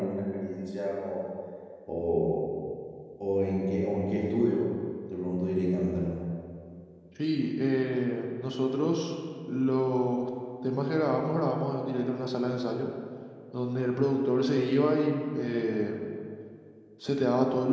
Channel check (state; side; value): identical; both; correlation 1.00